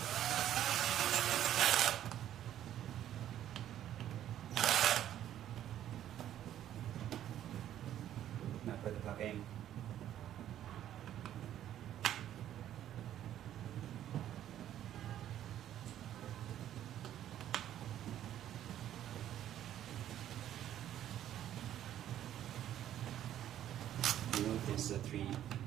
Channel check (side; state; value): left; quieter; 11.5 dB